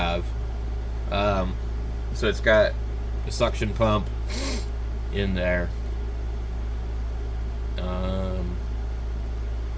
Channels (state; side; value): identical; both; correlation 1.00